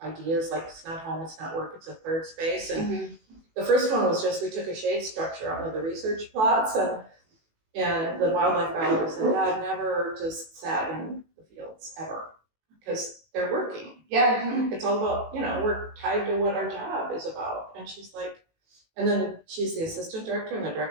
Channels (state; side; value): late; left; 18 ms